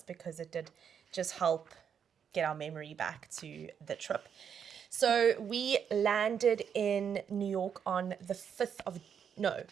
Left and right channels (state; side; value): quieter; left; 7.7 dB